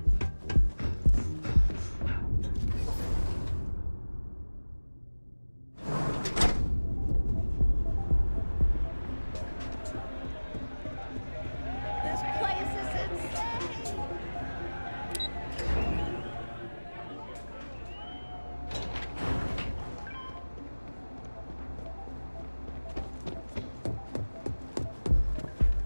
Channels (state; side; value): inverted; both; correlation -1.00